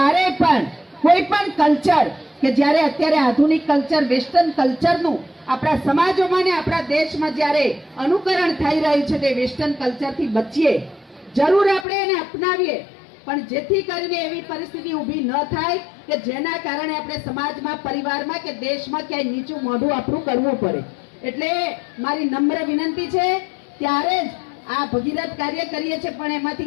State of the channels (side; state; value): right; drops out; at 11.9 s